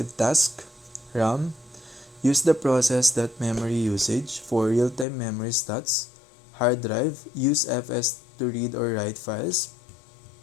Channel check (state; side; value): drops out; right; at 5.1 s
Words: tasks. RAM, use the process that memory usage for real-time memory stats. Hard drive, use FS to read or write files.